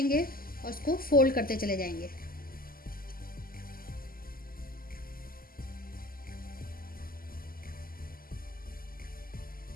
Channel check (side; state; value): right; late; 0.42 ms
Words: और इसको फोल्ड करते चले जाएंगे।